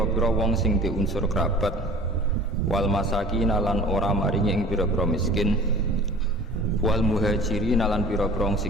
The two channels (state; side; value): normal; both; correlation 0.45